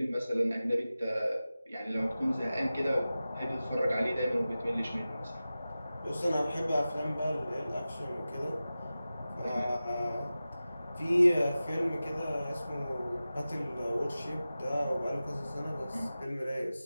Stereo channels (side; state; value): both; inverted; correlation -0.95